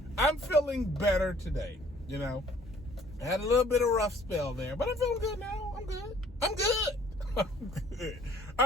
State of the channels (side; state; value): both; normal; correlation 0.58